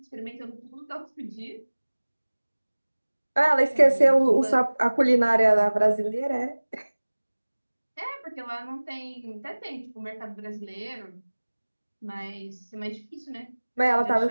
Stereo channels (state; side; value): inverted; both; correlation -1.00